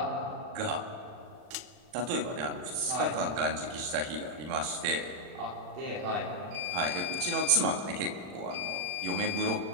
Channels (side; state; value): left; late; 40 ms